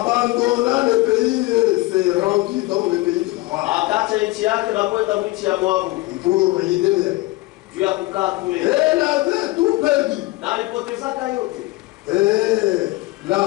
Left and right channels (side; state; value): right; quieter; 20.5 dB